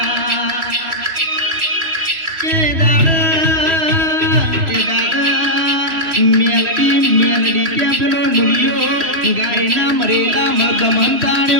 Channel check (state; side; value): late; left; 3.0 ms